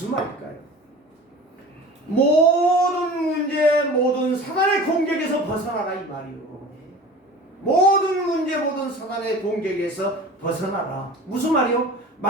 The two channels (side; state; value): both; normal; correlation 0.39